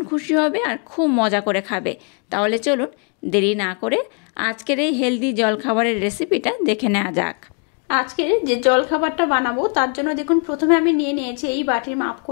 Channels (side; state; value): right; quieter; 39.0 dB